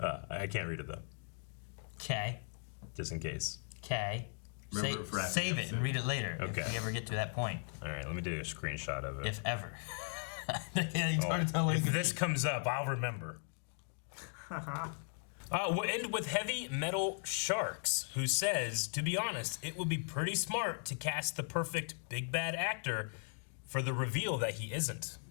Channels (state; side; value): silent; right; 53 dB below the other